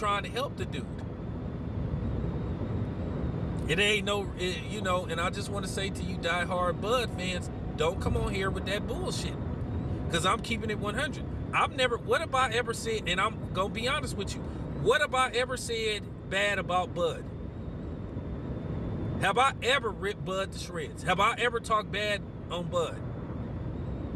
to help the dude. It ain't and I just want to say to you diehard Bud fans, don't come on here with that bullshit, because I'm keeping it 100. What have I ever said, and I'm going to be honest with you, what have I ever said bad about Bud? Have I ever ripped Bud to shreds? Have I ever talked bad on Bud?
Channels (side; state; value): both; identical; correlation 1.00